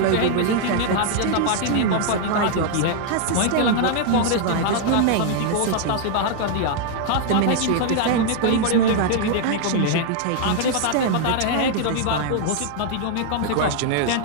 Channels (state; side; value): different; both; correlation 0.00